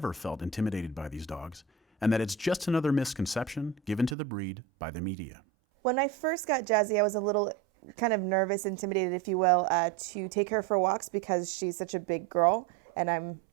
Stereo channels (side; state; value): left; drops out; at 4.2 s